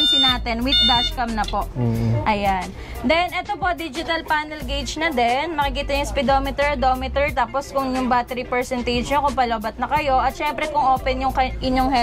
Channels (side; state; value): both; identical; correlation 1.00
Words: natin with dashcam na po. Ayan. Then, ito po, digital panel gauge na din. Makikita yung speedometer, odometer, tapos kung yung battery percentage nyo, kung palobat na kayo. At syempre, kung open yung inyong